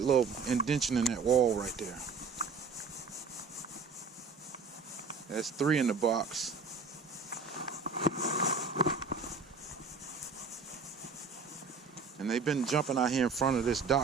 little indention in that wall right there. That's 3 in the box. And they've been jumping out here in front of this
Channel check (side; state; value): left; quieter; 4.8 dB